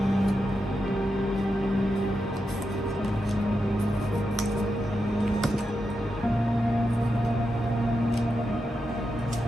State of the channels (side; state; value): both; normal; correlation 0.87